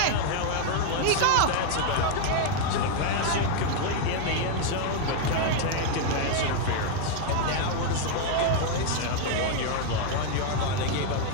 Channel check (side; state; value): both; different; correlation 0.00